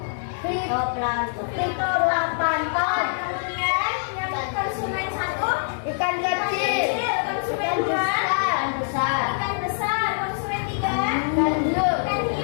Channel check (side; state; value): right; silent; digital silence